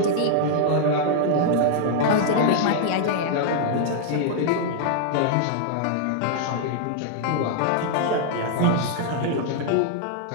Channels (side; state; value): both; different; correlation 0.00